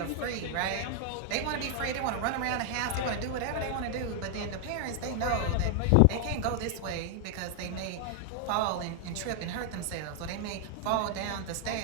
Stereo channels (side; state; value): both; different; correlation 0.00